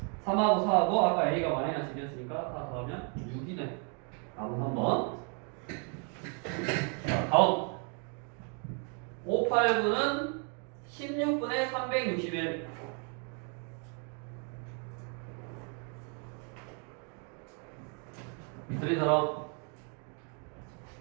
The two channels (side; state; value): left; quieter; 39.3 dB